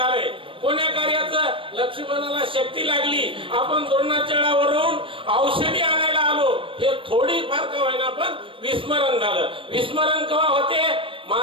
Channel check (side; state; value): left; late; 0.25 ms